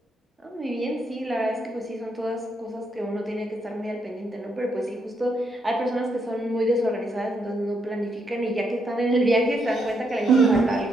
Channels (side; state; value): both; normal; correlation 0.78